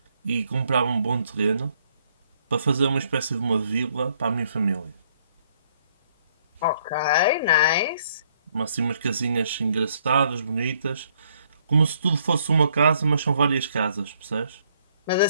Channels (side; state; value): both; inverted; correlation -0.68